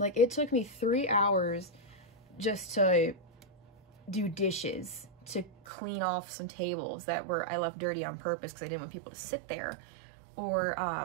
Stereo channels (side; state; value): left; drops out; at 5.5 s